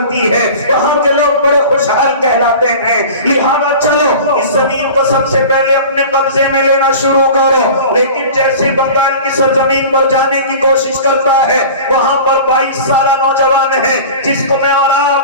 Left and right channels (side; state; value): both; inverted; correlation -0.38